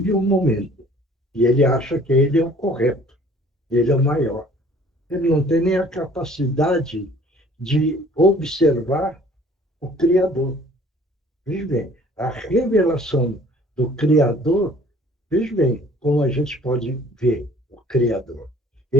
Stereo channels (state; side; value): normal; both; correlation 0.53